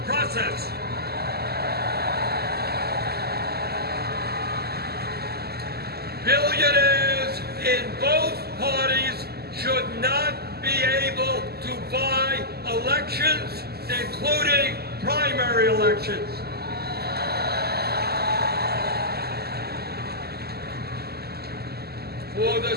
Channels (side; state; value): left; late; 0.46 ms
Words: process. Billionaires in both parties should not be able to buy elections, including primary elections. For the